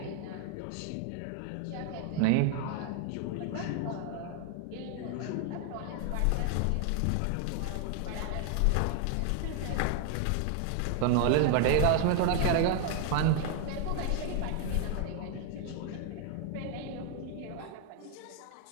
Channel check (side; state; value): both; different; correlation 0.00